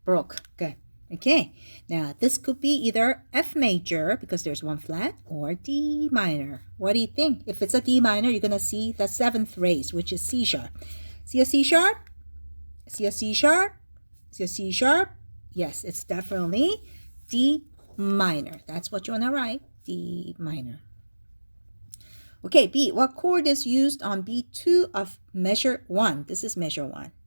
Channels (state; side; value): inverted; both; correlation -1.00